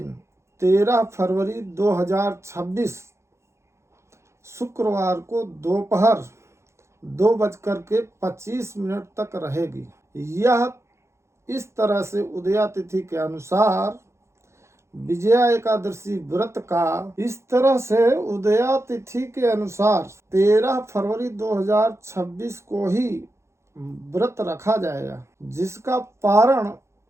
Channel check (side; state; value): left; late; 0.13 ms